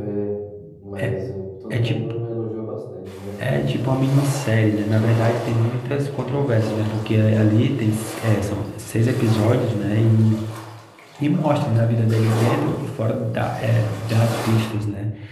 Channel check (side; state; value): both; identical; correlation 1.00